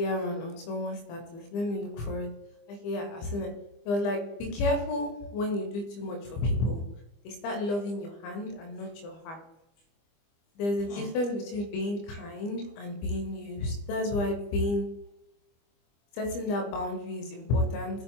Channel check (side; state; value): right; late; 25 ms